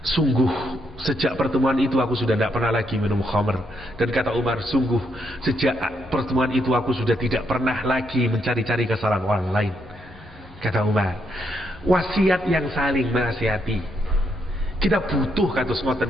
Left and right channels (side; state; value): left; noise; hum, 21 dB below the sound